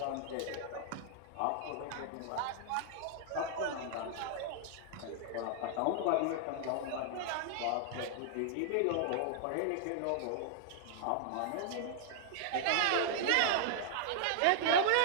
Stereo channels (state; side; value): different; both; correlation -0.01